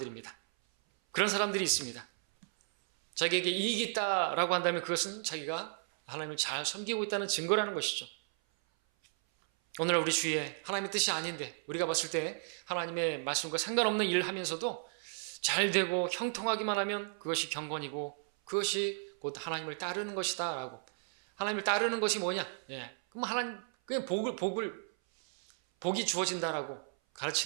그런 사람들이 있습니다. 자기에게 이익이 있다라고 한다면 그것은 자기가 하나님을 잘 섬기고 있다는 증거라는 것이죠. 오늘 우리 주위에 하나님의 뜻이 아닌데 우리가 봤을 때 하나님의 말씀과 상관없는 일을 하면서도 잘 되고 형통하기만 하면 그것이 경건이고 그것이 곧 하나님을 따르는 것이다 라고. 하나님을 따르는 것이 뭐냐? 그럼 하나님 그냥 복이 주어진다라고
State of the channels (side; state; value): left; silent; 55 dB below the other